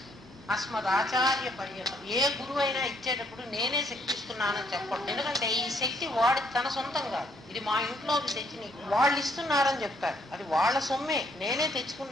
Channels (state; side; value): normal; both; correlation 0.69